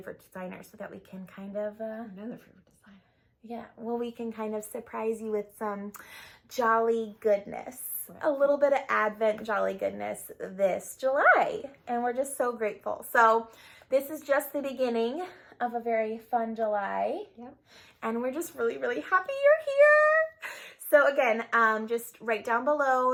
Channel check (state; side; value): identical; both; correlation 1.00